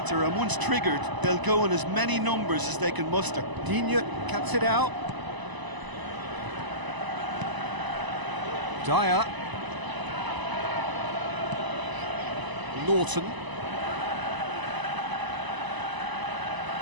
and once triggered, they'll go in as many numbers as they can muster. Digne cuts it out. Dyer. Norton.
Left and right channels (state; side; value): late; left; 1.0 ms